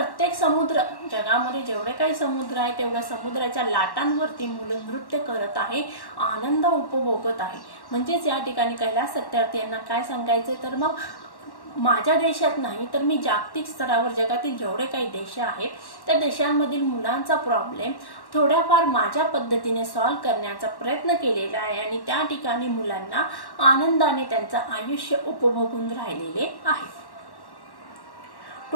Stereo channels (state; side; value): late; right; 1.1 ms